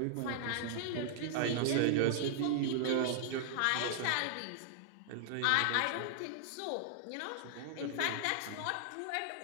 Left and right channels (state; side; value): different; both; correlation -0.01